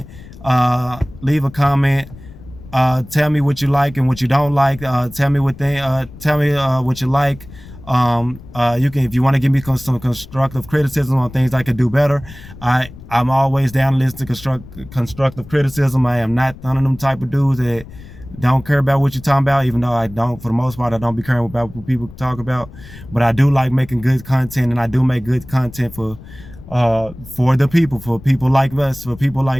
Tell me what you like and what you don't like. Tell me what you like. If you want to give me some constructive criticism on things I could do better, I'm always down to listen to constructive criticism. I am not one of them type of dudes that don't care about what you're talking about, even though I don't, for the most part, I don't be caring about what people talk about. But I do like making good content, and I do make good content for the people, for people like us, for people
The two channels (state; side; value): noise; left; rumble, 18 dB below the sound